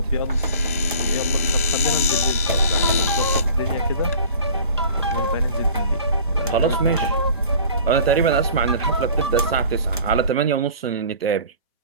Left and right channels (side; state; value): both; inverted; correlation -0.45